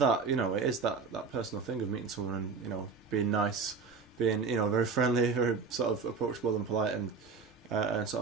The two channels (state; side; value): quieter; left; 5.1 dB